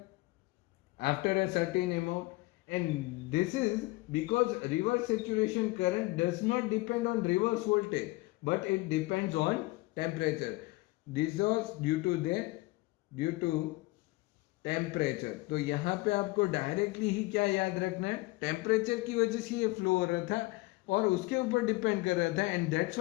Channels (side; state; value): right; quieter; 21.7 dB